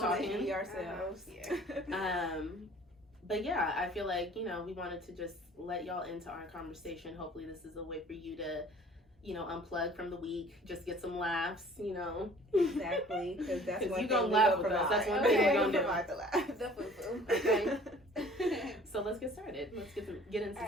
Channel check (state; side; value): normal; both; correlation 0.51